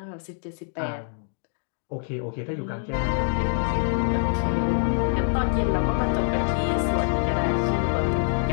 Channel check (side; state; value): right; silent; digital silence